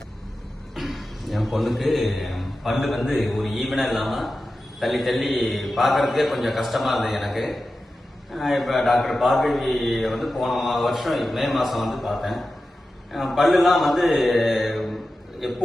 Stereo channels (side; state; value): both; normal; correlation 0.93